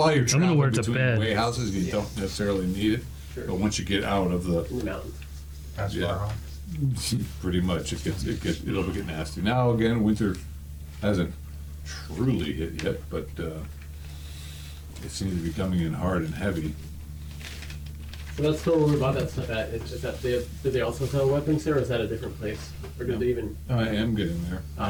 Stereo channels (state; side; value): identical; both; correlation 1.00